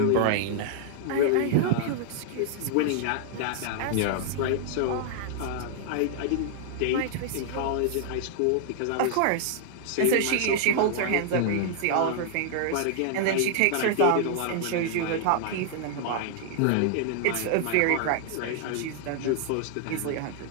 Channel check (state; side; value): different; both; correlation 0.00